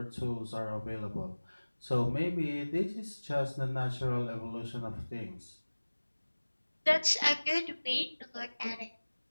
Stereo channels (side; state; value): both; inverted; correlation -1.00